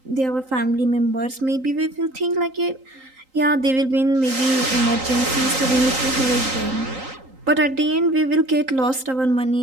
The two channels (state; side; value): late; left; 3.8 ms